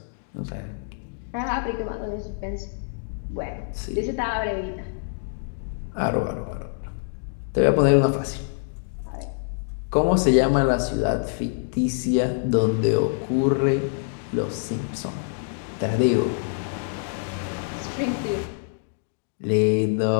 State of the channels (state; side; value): silent; right; digital silence